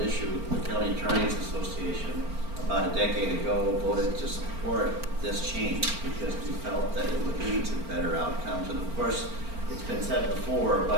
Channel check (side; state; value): left; late; 4.4 ms